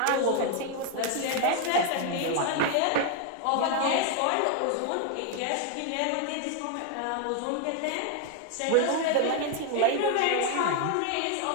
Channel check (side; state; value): both; different; correlation 0.01